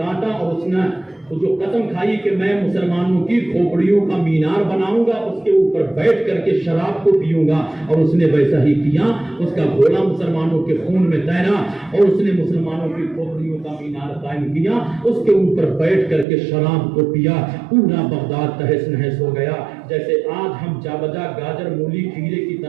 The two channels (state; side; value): drops out; left; at 16.2 s